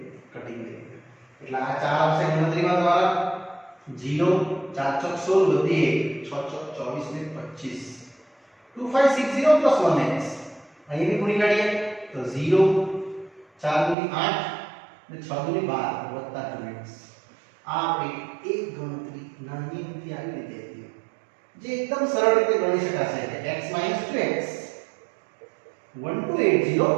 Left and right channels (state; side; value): drops out; left; at 14.0 s